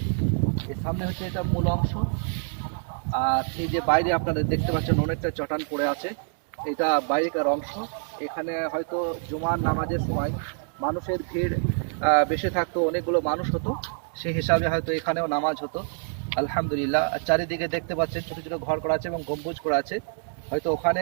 এর সামনে হচ্ছে এটা মূল অংশ। আর এই যে বাইরে আপনারা দেখতে পাচ্ছেন অনেকটা চটান পড়ে আছে, এটা বাইরেকার অংশ। এখানে হয়তো জুমার নামাজের সময় মানুষের ভিড় বেশি থাকতো, অনেকগুলো মানুষ হতো, সেই হিসাবে হয়তো এখানেও নামাজ হতো। আলহামদুলিল্লাহ। চারিদিকে দেখতে পাচ্ছেন ছোটো ছোটো ঘর করা আছে এবং গম্বুজ করা আছে, হয়তো ওখানে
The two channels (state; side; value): silent; left; 61 dB below the other